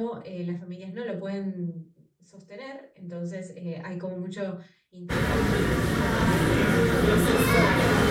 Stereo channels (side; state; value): both; identical; correlation 1.00